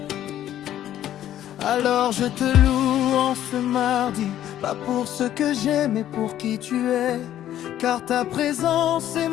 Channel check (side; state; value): right; quieter; 11.9 dB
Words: Alors je te loue en ce mardi, pas pour ce que j'aime, mais pour qui tu es. Car ta présence est